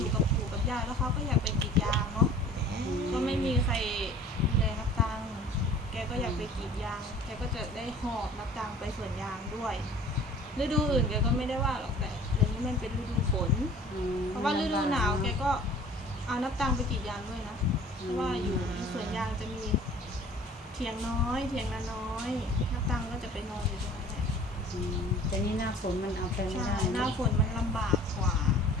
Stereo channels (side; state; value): both; normal; correlation 0.47